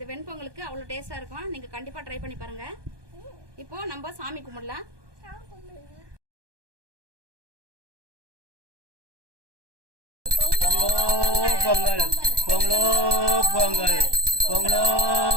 வெண்பொங்கலுக்கு அவ்வளோ டேஸ்டாக இருக்கும். நீங்கள் கண்டிப்பாக ட்ரை பண்ணி பாருங்க. இப்போ நம்ம சாமி கும்பிடலாம். பொங்கல் பொங்கலோ பொங்கல், பொங்கலோ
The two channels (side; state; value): left; late; 1.2 ms